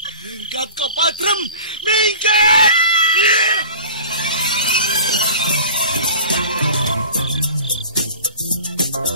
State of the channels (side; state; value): both; inverted; correlation -0.40